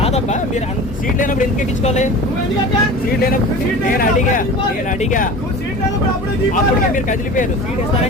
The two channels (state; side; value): normal; both; correlation 0.37